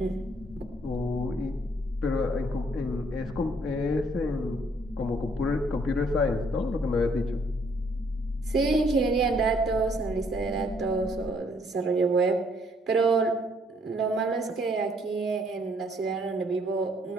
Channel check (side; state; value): both; normal; correlation 0.66